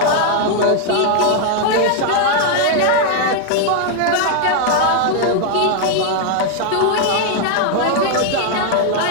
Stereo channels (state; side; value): different; both; correlation 0.00